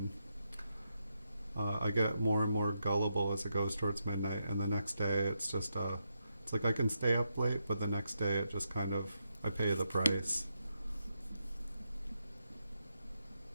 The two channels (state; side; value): inverted; both; correlation -0.84